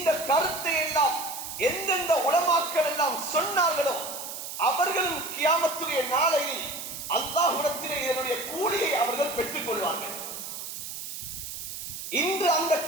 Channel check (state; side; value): noise; right; hiss, 8 dB below the sound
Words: கருத்தை எல்லாம் எந்தெந்த உலமாக்கள் எல்லாம் சொன்னார்களோ அவர்களும் கியாமத்துடைய நாளையில் அல்லாஹ்விடத்திலே இதனுடைய கூலியை அவர்கள் பெற்றுக் கொள்வார்கள். இன்று அந்த